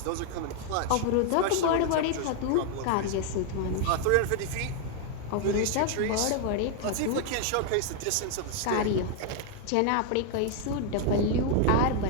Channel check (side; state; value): both; different; correlation 0.00